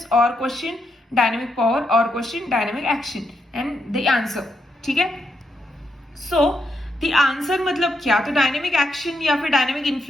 और क्वेश्चन डायनामिक पावर और question dynamic action and the answer. ठीक है, सो द आंसर मतलब क्या, तो डायनामिक एक्शन या फिर dynamic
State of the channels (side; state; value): both; normal; correlation 0.81